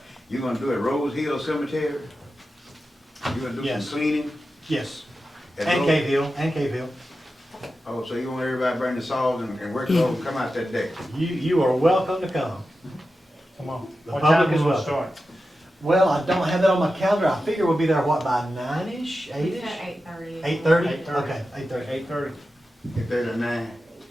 you're gonna do it at Rose Hill Cemetery? You're gonna do Yes. some cleaning? Yes, at and Rose- Cave Hill. Oh, so you want everybody to bring the saws and work it over and come out that day? You are welcome to come. Come on. The What public time is will it welcome. start? Well, I don't have that on my calendar. I figure we'll be there, what, by 9-ish, 8-ish? 8:30. 8:30? 8:30. Okay, 8:30. 8:30. If there's a 9.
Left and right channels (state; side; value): normal; both; correlation 0.92